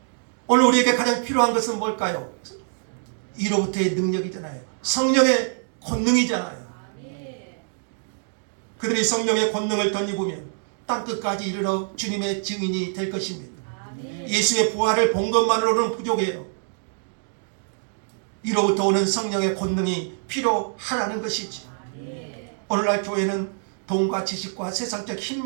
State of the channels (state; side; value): silent; left; digital silence